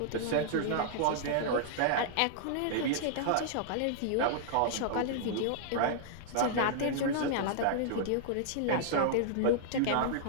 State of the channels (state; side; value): different; both; correlation -0.01